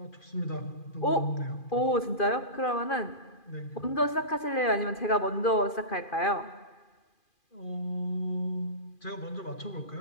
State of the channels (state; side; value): late; right; 2.4 ms